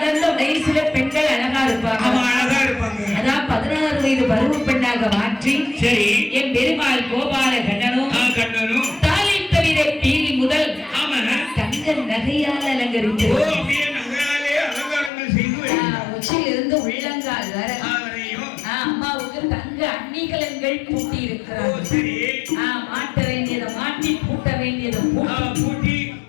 வயசுல பெண்கள் அழகா இருப்பாங்க. அதான் 16 வயது பருவ பெண்ணாக மாற்றி என் பெருமாள் கோபால கண்ணனும் தாலி தவிர பீலி முதல் தங்க நகையால் அலங்கரித்து உச்சியிலிருந்து உள்ளங்கால் வர அம்மாவுக்கு தங்க அணிகலன்கள் பூட்டி இருக்கிறார். மாட்ட வேண்டியதை மாட்டி பூட்ட வேண்டியதை பூட்டி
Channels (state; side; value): drops out; right; at 15.1 s